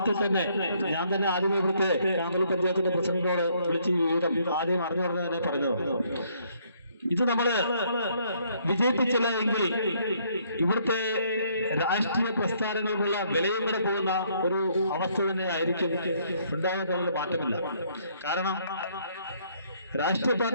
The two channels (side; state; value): both; inverted; correlation -0.67